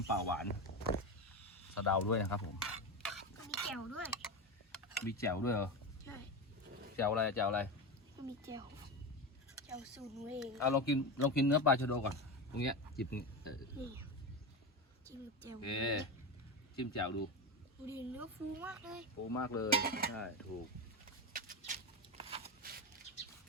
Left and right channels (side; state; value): both; normal; correlation 0.18